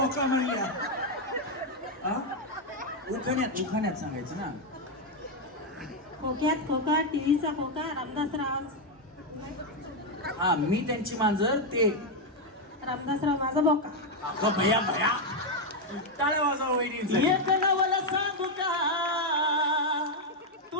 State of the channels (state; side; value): normal; both; correlation 0.02